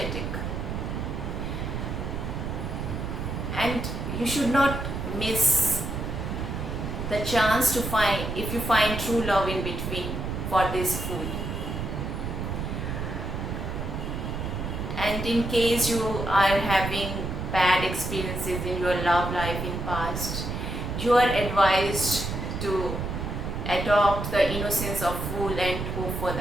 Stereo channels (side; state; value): right; noise; rumble, 4 dB below the sound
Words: And you should not miss the chance to find, if you find true love in between, for this fool. And in case you are having bad experiences in your love life in past, you are advised to adopt the innocence of fool and hope for